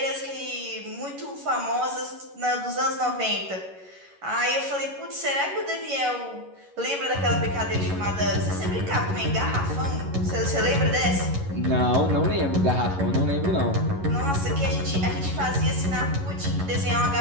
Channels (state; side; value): late; left; 11 ms